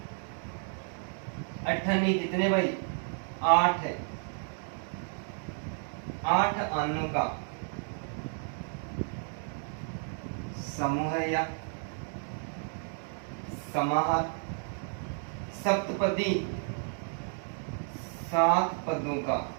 अठन्नी कितने भाई? 8 है। 8 अन्नों का समूह है, या समाहार। सप्तपदी 7 पदों का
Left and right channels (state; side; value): silent; left; 55 dB below the other